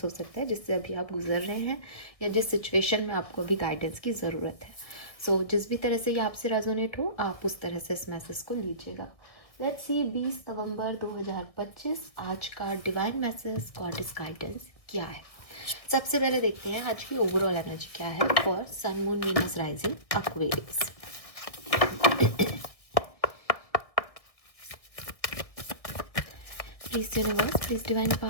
हो सकता है जिससे अभी आप गुजर रहे हैं, या जिस सिचुएशन में आपको अभी गाइडेंस की ज़रूरत है। सो जिस भी तरह से ये आपसे रेजोनेट हो, आप उस तरह से इस मैसेज को लीजिएगा। लेट्स सी 20 नवंबर 2025 आज का डिवाइन मैसेज, गॉडेस गाइडेंस क्या है। सबसे पहले देखते हैं आज की ओवरऑल एनर्जी क्या है for sun moon Venus rising Aquarius. Please universe, please divine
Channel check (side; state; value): right; late; 1.6 ms